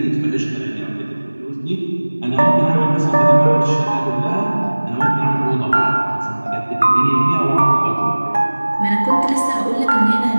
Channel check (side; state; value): both; inverted; correlation -1.00